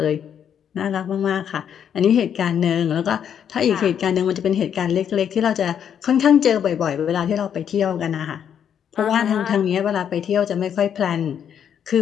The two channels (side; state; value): right; quieter; 8.6 dB